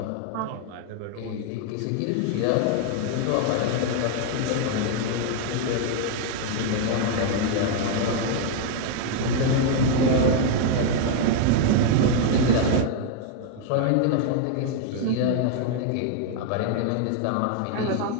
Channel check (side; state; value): both; different; correlation 0.00